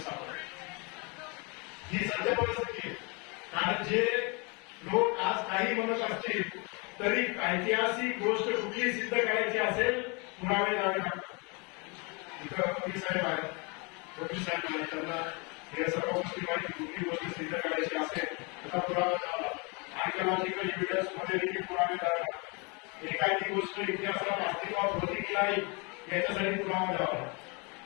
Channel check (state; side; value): quieter; right; 31.0 dB